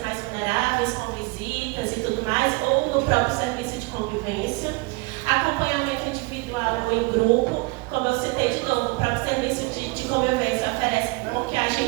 mais vulneráveis, com visitas e tudo mais, ou no próprio serviço de convivência. Acompanhamento individual ou em grupo, como eu citei de novo, o próprio serviço de convivência oferece com que a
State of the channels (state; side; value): quieter; left; 26.8 dB